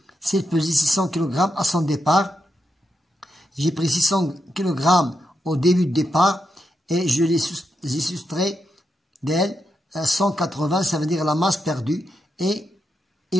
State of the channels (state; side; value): normal; both; correlation 0.85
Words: S'il pesait 600 kg à son départ, j'ai pris 600 kg au début de départ et je les ai soustrait d'elle 180, ça veut dire la masse perdue, et